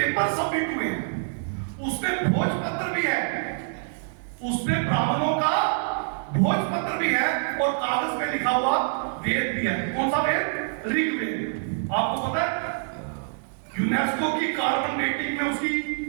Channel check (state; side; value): silent; left; digital silence